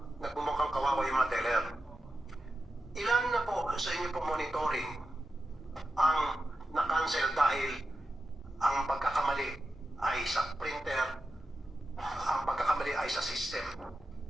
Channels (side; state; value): both; normal; correlation 0.90